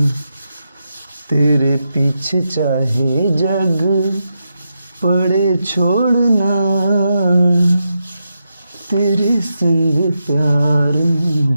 तेरे पीछे चाहे जग पड़े छोड़ना, तेरे संग प्यार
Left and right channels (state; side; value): inverted; both; correlation -0.86